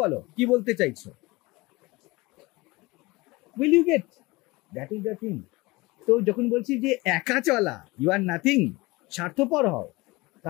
বলো, কি বলতে চাইছো, will you get, that is the thing. তো যখন বলছি যে একা চলা, ইউ আর নাথিং, স্বার্থপর হও,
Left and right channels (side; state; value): right; quieter; 22.7 dB